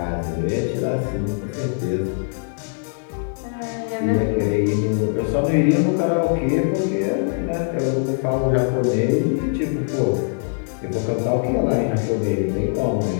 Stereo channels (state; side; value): silent; right; 64 dB below the other